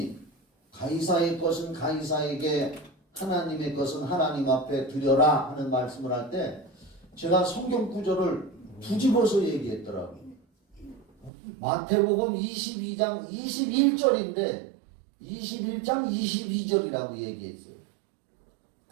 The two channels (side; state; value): left; drops out; at 11.3 s